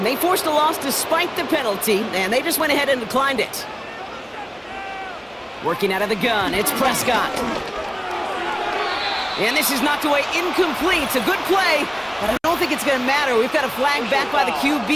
forced a loss despite the penalty, and they just went ahead and declined it. Working out of the gun, it's Prescott. And this is knocked away incomplete. It's a good play, but I don't don't think it's going to matter. We've got a flag back by the QB.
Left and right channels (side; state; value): both; identical; correlation 1.00